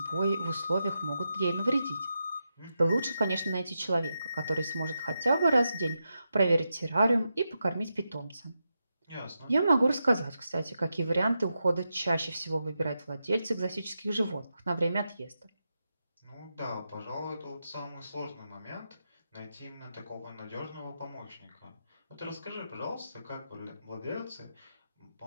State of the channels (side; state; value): both; inverted; correlation -0.87